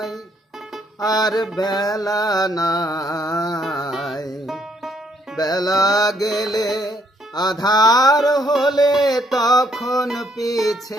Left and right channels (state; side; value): normal; both; correlation 0.69